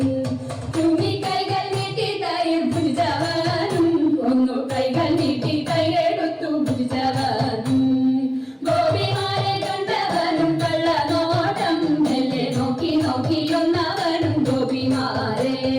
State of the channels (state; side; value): identical; both; correlation 1.00